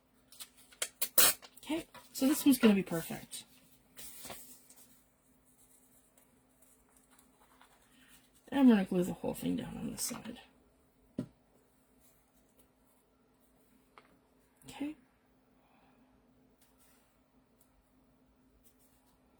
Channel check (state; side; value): identical; both; correlation 1.00